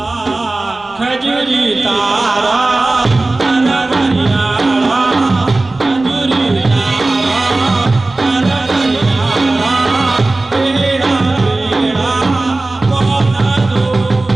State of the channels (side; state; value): left; quieter; 3.0 dB